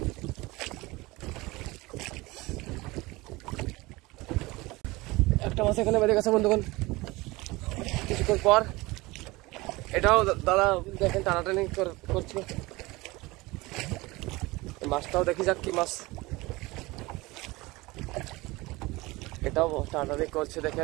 একটা মাছ এখানে বেঁধে গেছে বন্ধুগণ কিছুক্ষণ পর। এটাও দাদা দেখেন টানাটানি করছে। মাছটাও দেখি যাক কি মাছ। এটাও টানাটানি করছে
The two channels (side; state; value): left; quieter; 21.8 dB